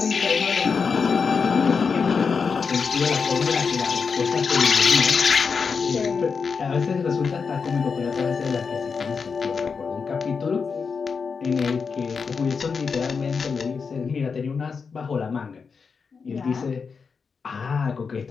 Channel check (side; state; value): right; quieter; 5.4 dB